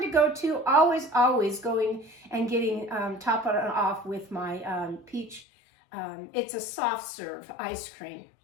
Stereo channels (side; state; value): right; drops out; at 5.5 s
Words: to go to. Always going and getting top it off with my peach. It's a soft serve ice cream.